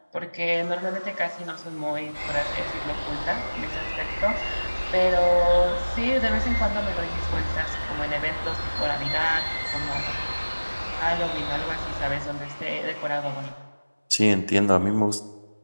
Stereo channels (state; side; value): inverted; both; correlation -1.00